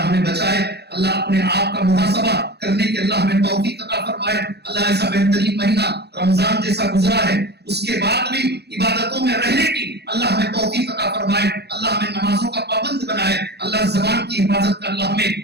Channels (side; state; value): left; late; 0.48 ms